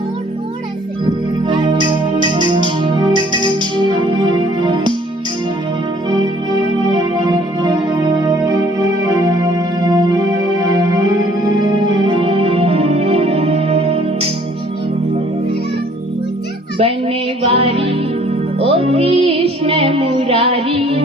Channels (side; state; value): both; normal; correlation 0.58